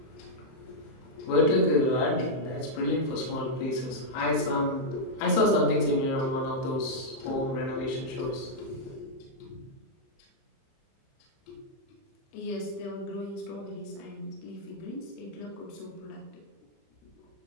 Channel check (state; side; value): late; right; 31 ms